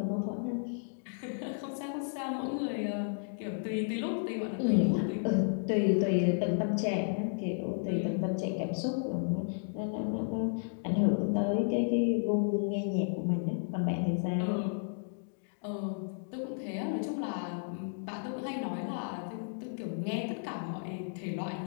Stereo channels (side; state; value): right; silent; digital silence